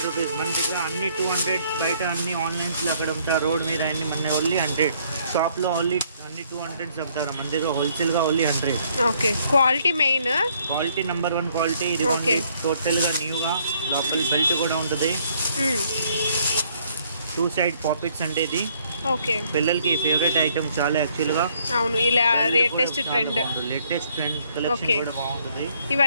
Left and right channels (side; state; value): both; inverted; correlation -0.66